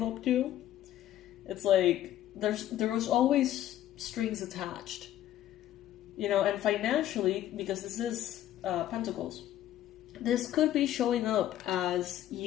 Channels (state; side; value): quieter; right; 12.6 dB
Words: you. It's like, there was always strings attached. You know, and financially, because this is Pentacles, this could be showing up as